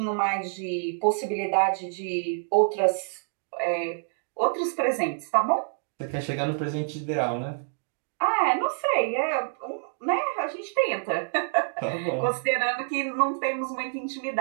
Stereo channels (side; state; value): left; silent; digital silence